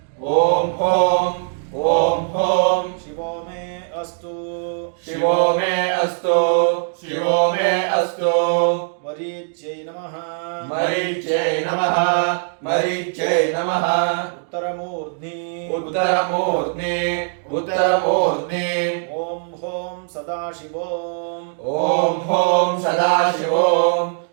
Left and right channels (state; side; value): silent; left; digital silence